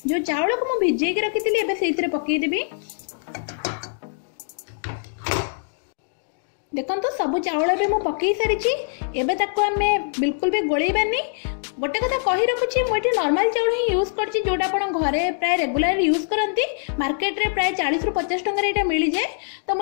जो चावल को मु भिजे के रखितिली एबे सेइतरे पकेई देबी। देखंतु सब चावल एबे मु पकेई सारिची। एबे ताको आमे बिल्कुल भी गोळैबानी। गोटे कथा कहि रखुची मु एठी नॉर्मल चावल ही यूज करची जोटा आपण घरे प्राय रेगुलर यूज करंती। मार्केट रे प्राय 40 ରୁ 50 टंका रे एटा मिली जाय। तो मु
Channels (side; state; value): right; silent; digital silence